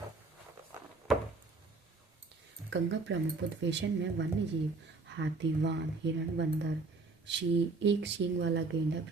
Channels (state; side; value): quieter; left; 3.8 dB